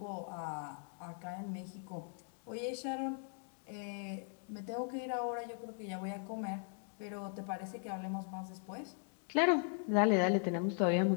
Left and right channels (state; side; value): silent; right; 52 dB below the other